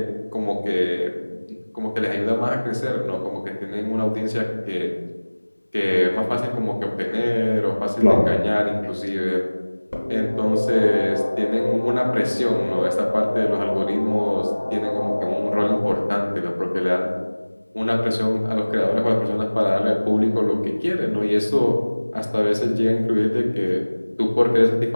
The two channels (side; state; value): both; inverted; correlation -1.00